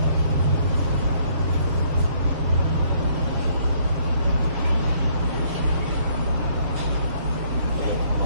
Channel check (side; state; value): left; late; 7.2 ms